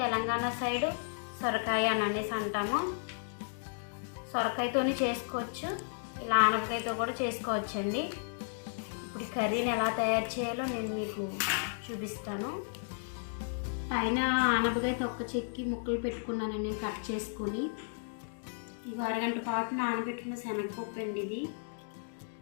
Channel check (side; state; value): right; silent; digital silence